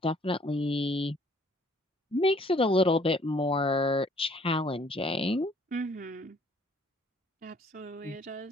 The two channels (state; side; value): normal; both; correlation 0.60